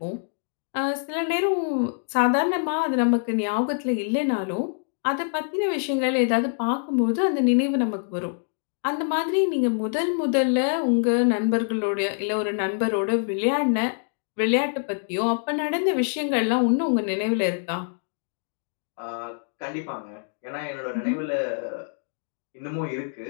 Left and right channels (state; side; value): silent; right; digital silence